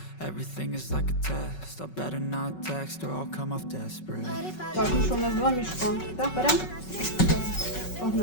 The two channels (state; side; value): late; right; 5.4 ms